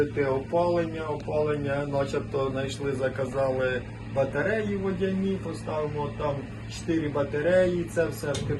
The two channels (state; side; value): identical; both; correlation 1.00